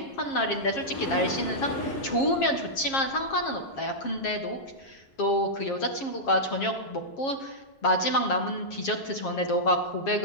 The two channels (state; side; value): late; right; 7.4 ms